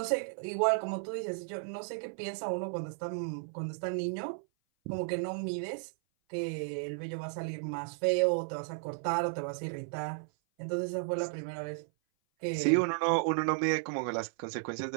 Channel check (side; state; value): left; silent; 55 dB below the other